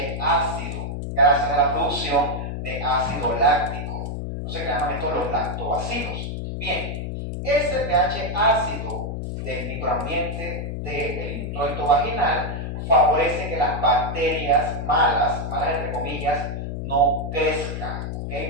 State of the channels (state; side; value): noise; left; hum, 4 dB below the sound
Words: ácido, gracias a la producción de ácido láctico. Entonces, que llaman estos los lactobacilos. Bien, ese pH ácido del microambiente del introito vaginal favorece que las bacterias malas entre comillas, no crezcan,